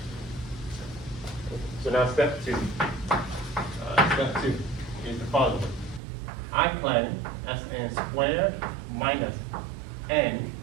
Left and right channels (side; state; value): left; drops out; at 6.0 s